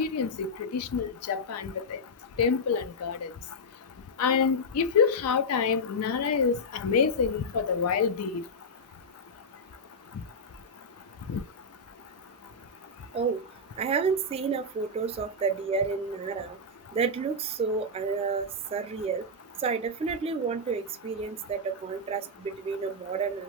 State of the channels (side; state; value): both; normal; correlation -0.06